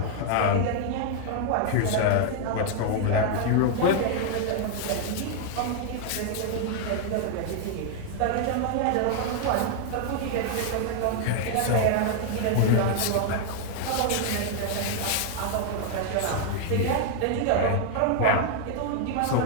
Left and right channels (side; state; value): both; different; correlation 0.00